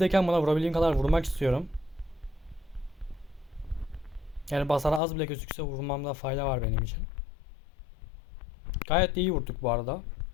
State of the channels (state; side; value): drops out; right; at 5.0 s